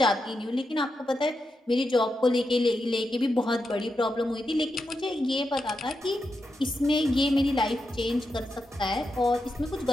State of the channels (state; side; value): normal; both; correlation 0.86